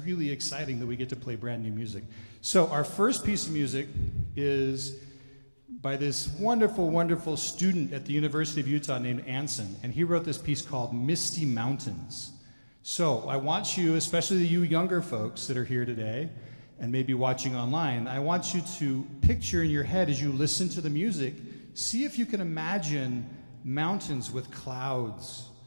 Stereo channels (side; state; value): both; inverted; correlation -1.00